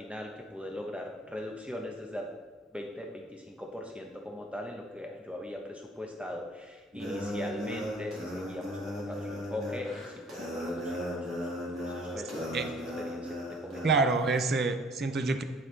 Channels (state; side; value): normal; both; correlation 0.55